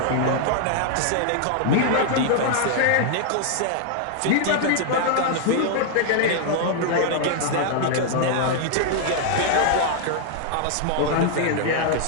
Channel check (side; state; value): both; different; correlation 0.00